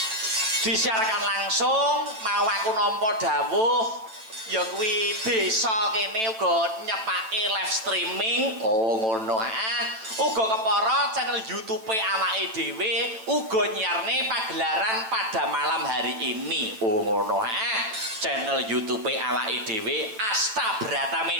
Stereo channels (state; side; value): late; left; 9.1 ms